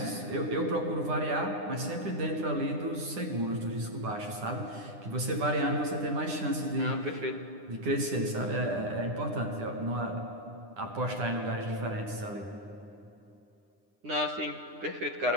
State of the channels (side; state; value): left; late; 9.9 ms